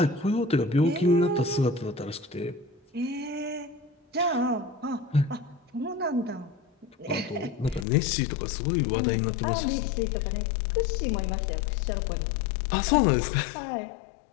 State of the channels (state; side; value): drops out; right; at 7.9 s